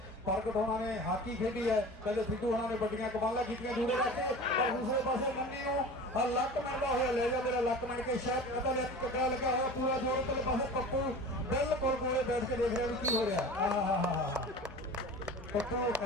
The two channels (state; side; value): normal; both; correlation 0.37